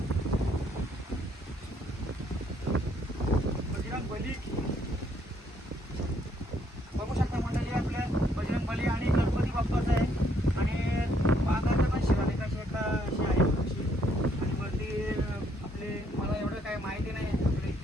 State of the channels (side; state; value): both; normal; correlation 0.69